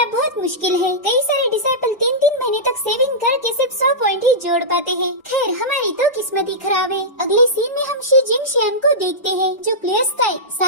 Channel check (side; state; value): both; normal; correlation -0.13